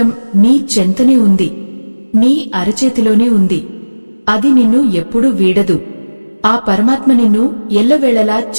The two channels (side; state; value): both; inverted; correlation -1.00